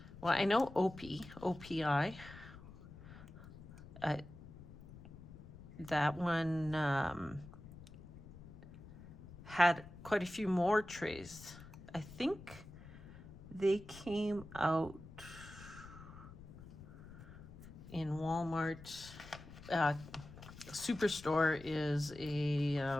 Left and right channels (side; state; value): left; noise; rumble, 16 dB below the sound